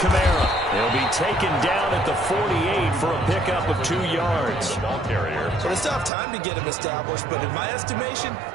Kamara. He'll be taken down at the 48 for a pickup of 2 yards. So they still have time to get him established, but in my estimation,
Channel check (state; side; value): drops out; left; at 6.1 s